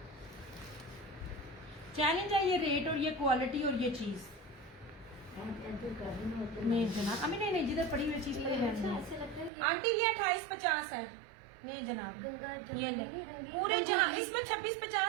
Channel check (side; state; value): left; drops out; at 9.5 s